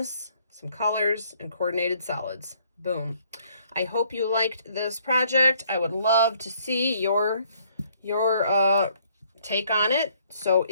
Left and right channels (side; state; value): both; inverted; correlation -0.64